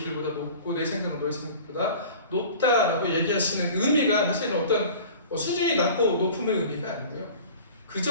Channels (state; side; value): inverted; both; correlation -0.42